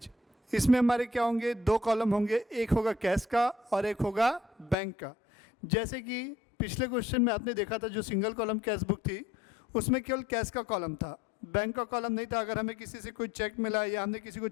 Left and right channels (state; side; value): drops out; right; at 4.8 s